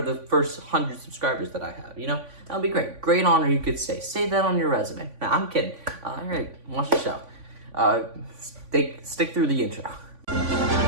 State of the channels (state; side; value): late; left; 3.5 ms